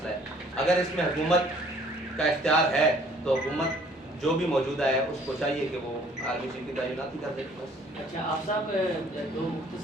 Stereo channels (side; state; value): both; normal; correlation 0.57